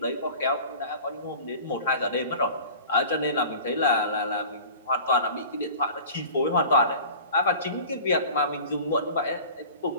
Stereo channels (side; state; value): both; inverted; correlation -0.41